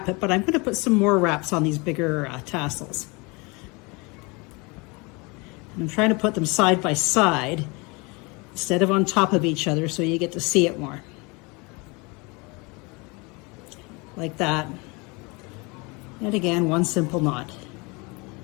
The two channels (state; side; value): quieter; right; 27.9 dB